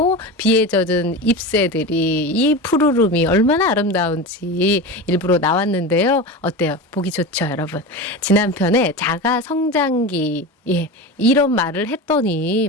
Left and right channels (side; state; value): both; normal; correlation 0.26